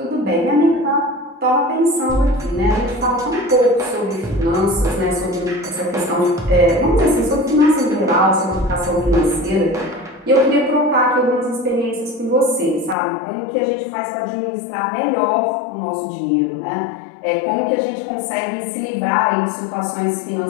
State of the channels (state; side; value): drops out; right; at 13.0 s